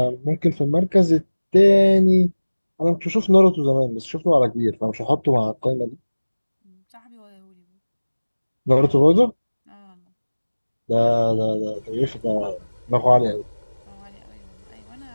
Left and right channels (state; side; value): inverted; both; correlation -1.00